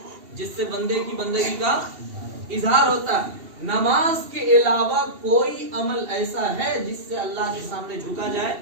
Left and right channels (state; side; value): late; left; 2.7 ms